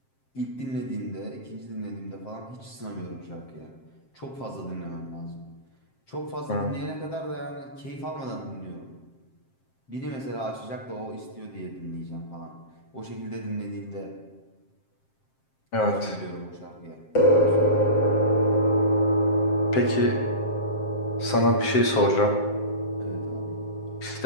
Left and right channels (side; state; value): right; late; 7.6 ms